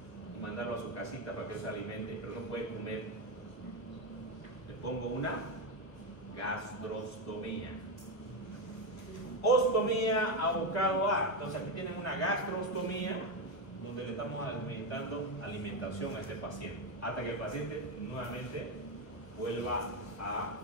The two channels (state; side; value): late; right; 1.3 ms